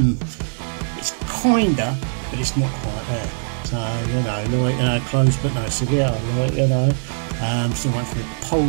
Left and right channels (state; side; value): silent; left; digital silence